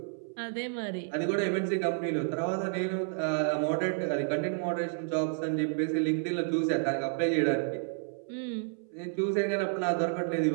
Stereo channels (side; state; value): left; silent; 57 dB below the other